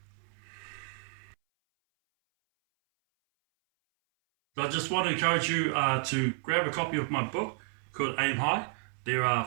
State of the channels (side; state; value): left; silent; 57 dB below the other